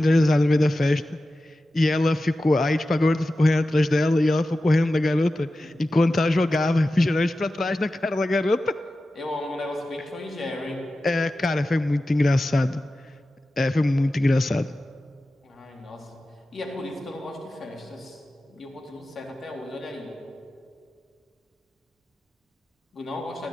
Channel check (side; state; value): both; normal; correlation 0.94